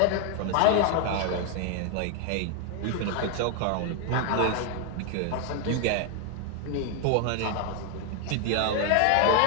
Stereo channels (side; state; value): both; different; correlation 0.01